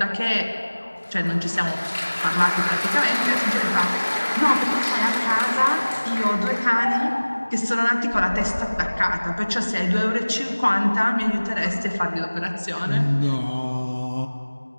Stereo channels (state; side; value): inverted; both; correlation -1.00